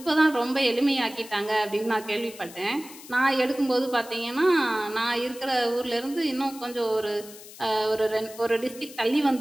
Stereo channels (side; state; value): left; noise; hiss, 17 dB below the sound